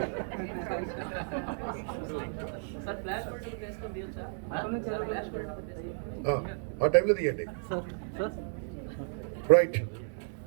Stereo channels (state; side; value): silent; left; 56 dB below the other